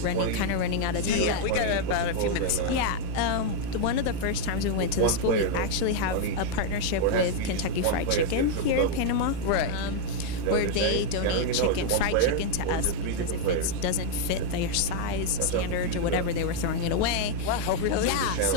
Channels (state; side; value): different; both; correlation 0.00